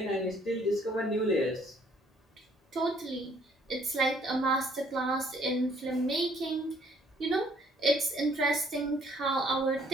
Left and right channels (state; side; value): normal; both; correlation 0.62